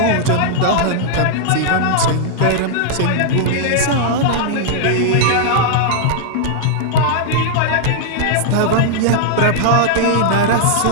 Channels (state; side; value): different; both; correlation -0.01